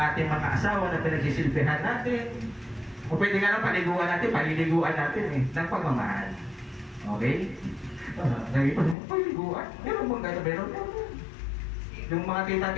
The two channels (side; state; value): right; drops out; at 9.0 s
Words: ating mga asawa na pinagsisilbihan natin. O pwede nga lang paliliguan natin eh, ng pagmamahal. Okay? Sabi pa, paliliguan? Meron bang gano'n? Meron. Yung mga